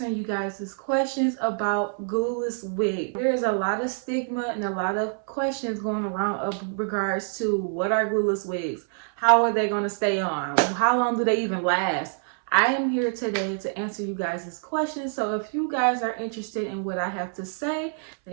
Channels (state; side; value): silent; left; 61 dB below the other